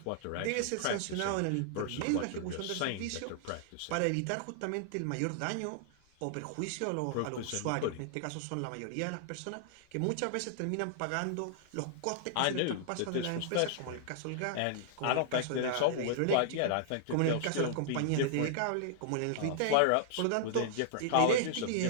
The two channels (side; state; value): both; different; correlation -0.01